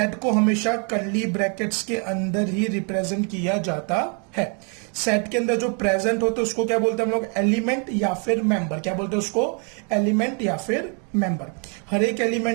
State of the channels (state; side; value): quieter; left; 37.5 dB